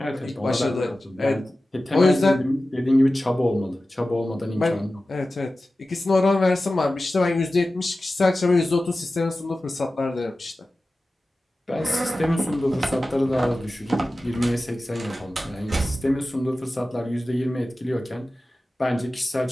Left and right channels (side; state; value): both; normal; correlation 0.95